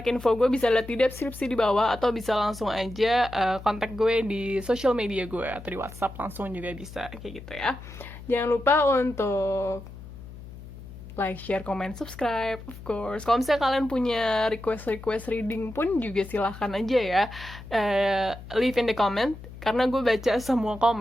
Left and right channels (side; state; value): left; noise; hum, 14 dB below the sound